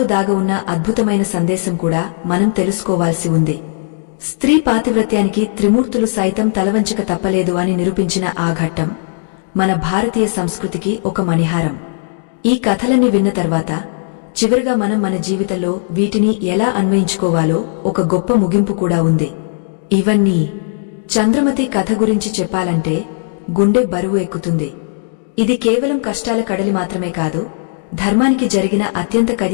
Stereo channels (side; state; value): right; silent; digital silence